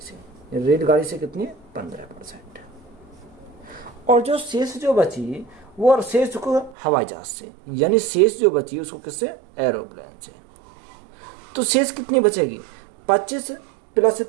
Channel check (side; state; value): left; drops out; at 6.8 s